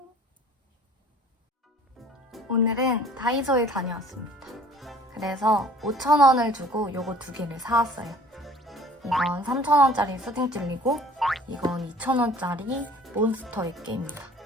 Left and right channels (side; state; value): both; normal; correlation 0.50